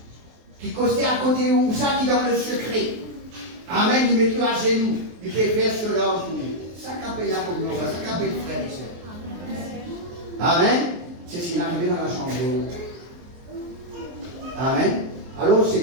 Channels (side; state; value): left; late; 23 ms